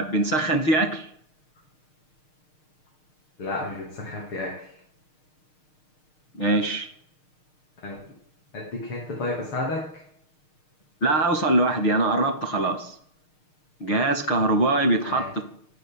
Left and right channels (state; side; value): late; right; 6.5 ms